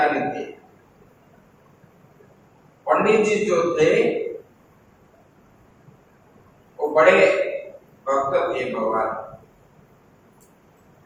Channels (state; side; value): identical; both; correlation 1.00